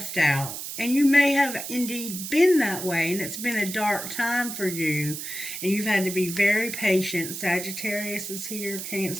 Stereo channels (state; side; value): noise; right; hiss, 7 dB below the sound